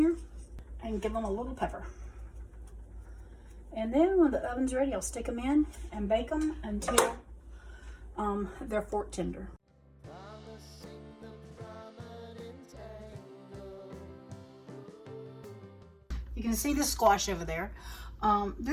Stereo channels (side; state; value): both; identical; correlation 1.00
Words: and give them a little pepper. And then when the oven's ready, I'll stick them in and bake them until they're fork tender. You can see the squash over there.